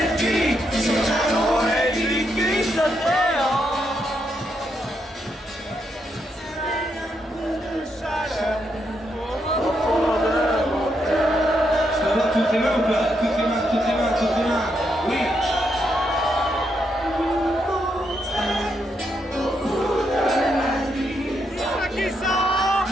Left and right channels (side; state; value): both; normal; correlation 0.79